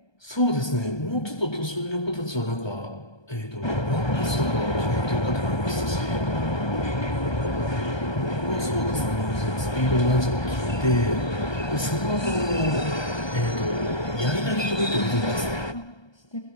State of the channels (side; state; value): right; late; 1.2 ms